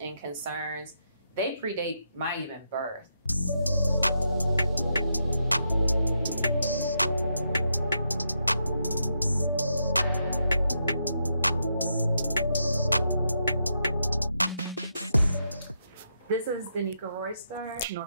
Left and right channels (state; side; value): inverted; both; correlation -0.81